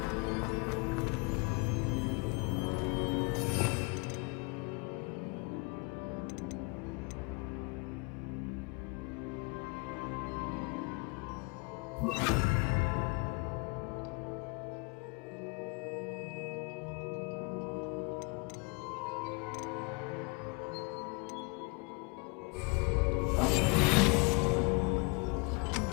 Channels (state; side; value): quieter; right; 30.5 dB